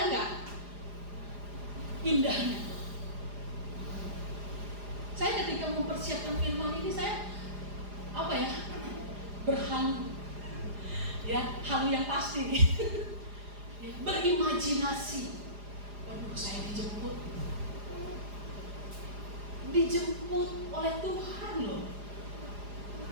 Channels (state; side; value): late; left; 4.9 ms